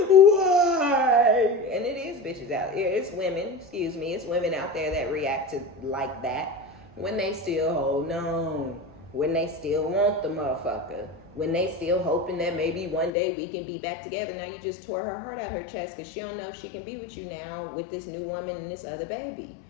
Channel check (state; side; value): drops out; right; at 13.1 s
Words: Why? And it is bitches out there. It's women, it's women out there that react to like that when they still hold on, when they still want the motherfucker, when they still hoping that maybe one day we can be back together. Now you just tore her heart out her chest because she don't know if she can be with you now with this new woman and this other baby,